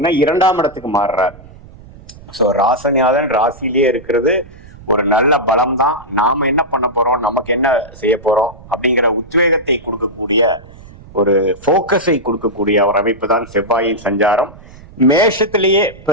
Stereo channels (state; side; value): noise; right; rumble, 20 dB below the sound